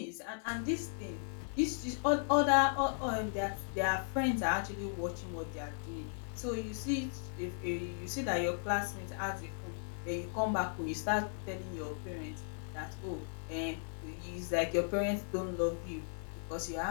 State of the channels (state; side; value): silent; right; 53 dB below the other